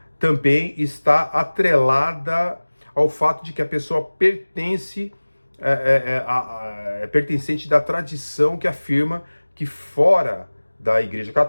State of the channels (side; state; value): both; inverted; correlation -1.00